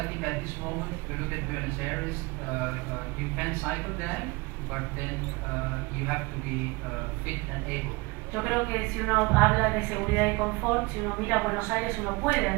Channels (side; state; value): left; quieter; 25.3 dB